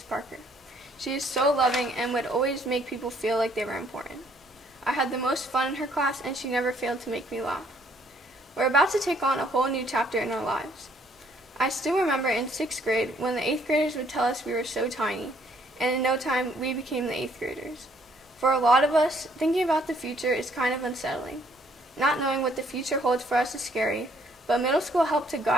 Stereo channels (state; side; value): normal; both; correlation 0.65